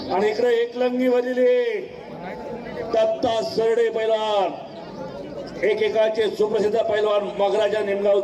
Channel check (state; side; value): identical; both; correlation 1.00